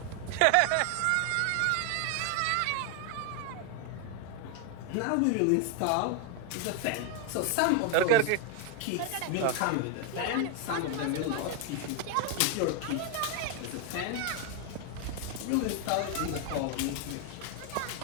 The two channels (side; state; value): both; different; correlation 0.01